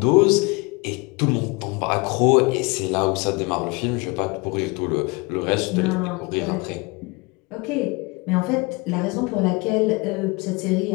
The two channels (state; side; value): quieter; right; 27.2 dB